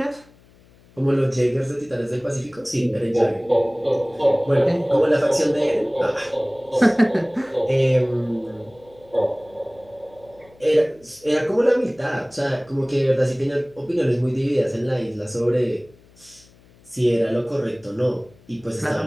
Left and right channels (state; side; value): noise; left; hum, 28 dB below the sound